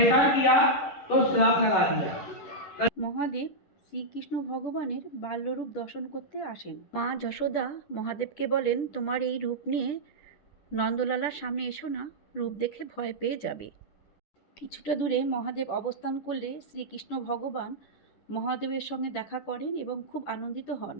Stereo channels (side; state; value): right; late; 10 ms